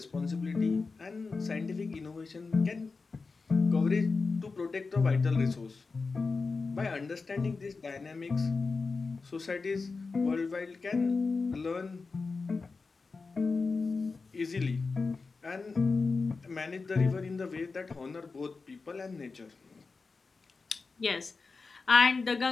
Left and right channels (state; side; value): quieter; right; 4.3 dB